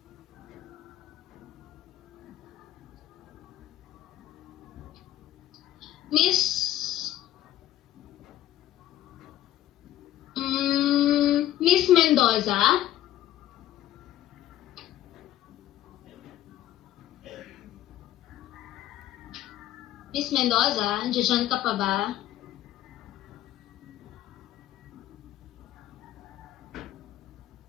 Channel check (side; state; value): right; quieter; 13.4 dB